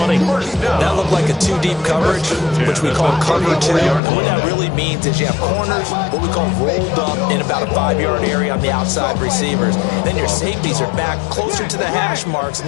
That looked like a 2-deep coverage, which we call cover 2. And what that really means is you have corners, what we call rolled up in about a 5-yard area on the outside receivers. Then your safeties are back closer to the hash marks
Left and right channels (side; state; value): right; drops out; at 4.0 s